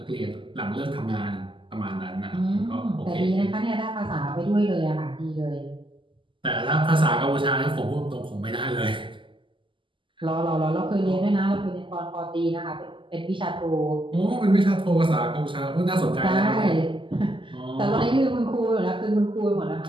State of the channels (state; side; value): late; left; 0.25 ms